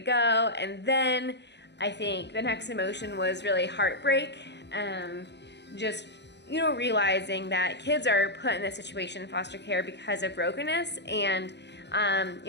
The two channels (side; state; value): right; late; 0.50 ms